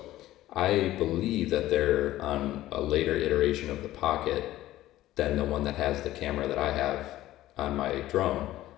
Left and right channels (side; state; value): right; quieter; 15.0 dB